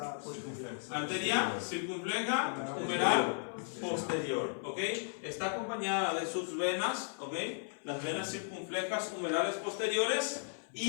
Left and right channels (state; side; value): silent; right; 54 dB below the other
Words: Arteria circunfleja humeral posterior. ¿Ok? Está acompañada de sus venas. ¿Ok? Las venas circunflejas humerales posteriores.